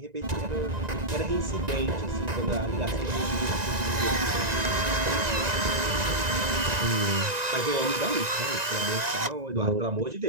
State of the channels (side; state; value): left; late; 1.9 ms